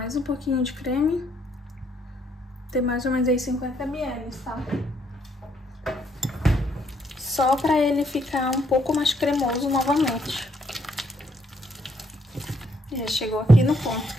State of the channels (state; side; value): normal; both; correlation 0.71